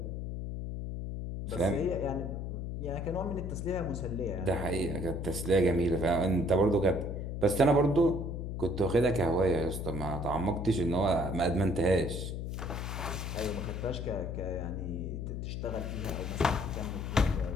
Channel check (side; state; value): left; noise; hum, 4 dB below the sound